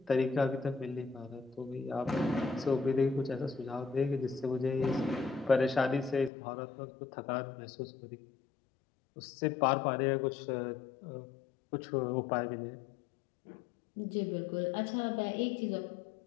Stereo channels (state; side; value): drops out; right; at 6.3 s